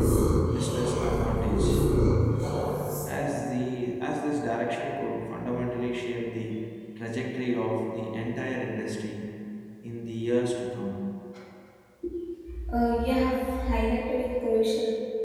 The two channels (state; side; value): identical; both; correlation 1.00